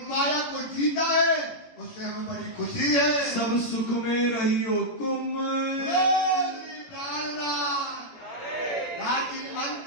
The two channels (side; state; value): right; late; 17 ms